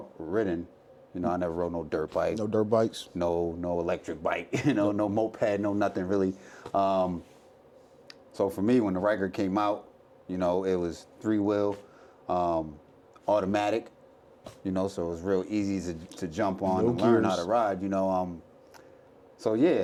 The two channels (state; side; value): identical; both; correlation 1.00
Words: I never rode no dirt bike. No dirt bikes? No electric bike, no moped, no nothing really. So for me, when the Ryker came out, it was 3-wheel, automatic, so it was real easy to jump on and learn how to ride, So